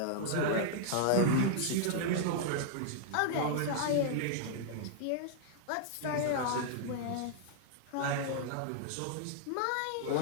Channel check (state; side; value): different; both; correlation -0.01